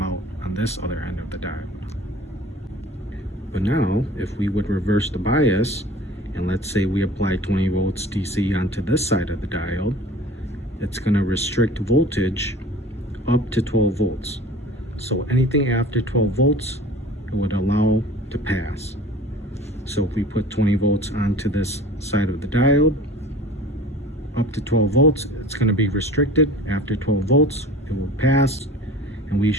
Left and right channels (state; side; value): normal; both; correlation 0.43